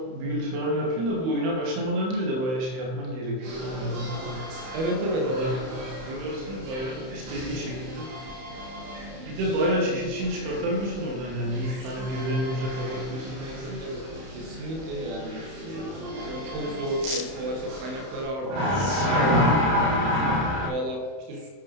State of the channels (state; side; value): late; left; 31 ms